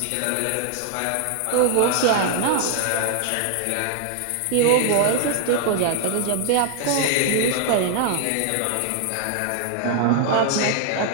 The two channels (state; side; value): different; both; correlation 0.00